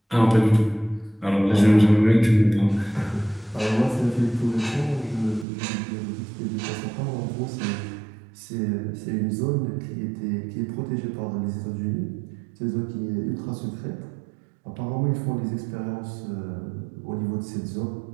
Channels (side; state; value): left; drops out; at 5.5 s